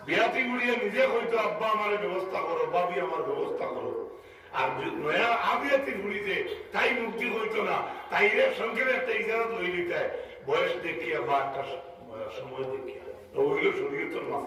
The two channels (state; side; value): identical; both; correlation 1.00